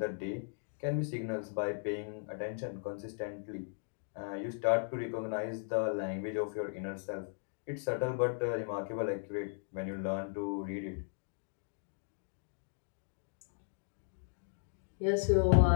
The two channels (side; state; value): right; silent; digital silence